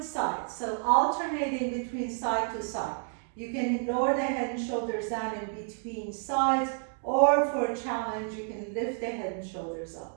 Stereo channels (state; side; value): silent; left; 58 dB below the other